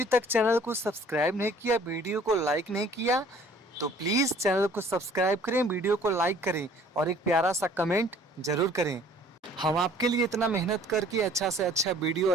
तक चैनल को सब्सक्राइब नहीं किया, वीडियो को लाइक नहीं किया तो प्लीज़ चैनल को सब्सक्राइब करें, वीडियो को लाइक करें और एक प्यारा सा कमेंट जरूर करें। हम आपके लिए इतना मेहनत करके अच्छा से अच्छा वीडियो,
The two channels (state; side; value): normal; both; correlation 0.54